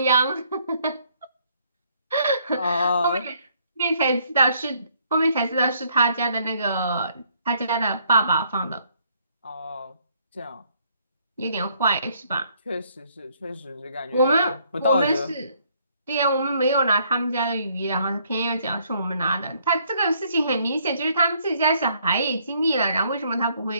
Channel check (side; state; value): both; inverted; correlation -0.67